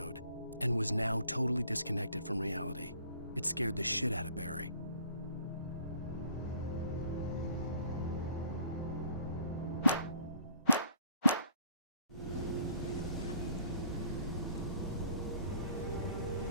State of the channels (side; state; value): both; inverted; correlation -0.58